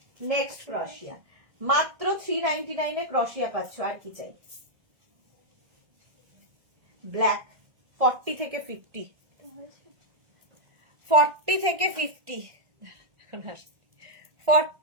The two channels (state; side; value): late; left; 1.7 ms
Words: নেক্সট ক্রশিয়া, মাত্র 399 ক্রশিয়া পাচ্ছ, আর কি চাই। ব্ল্যাক 40 থেকে 50, 40 থেকে 50,